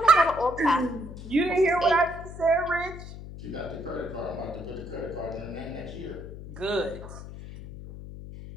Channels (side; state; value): left; noise; hum, 12 dB below the sound